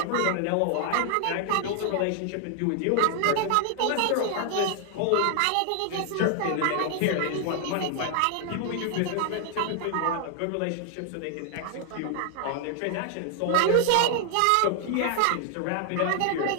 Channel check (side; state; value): both; different; correlation 0.00